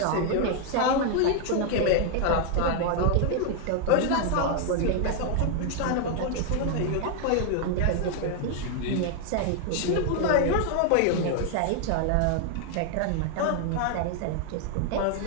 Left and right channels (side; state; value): both; different; correlation 0.00